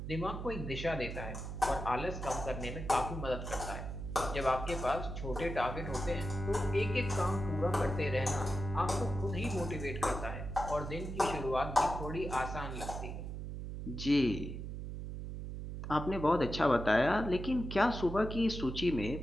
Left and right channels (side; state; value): right; noise; hum, 6 dB below the sound